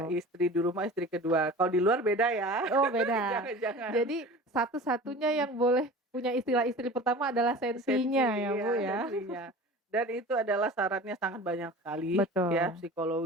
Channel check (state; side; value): normal; both; correlation 0.38